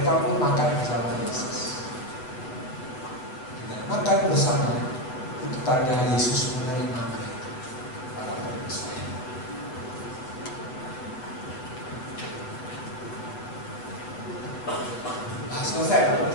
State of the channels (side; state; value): right; late; 7.7 ms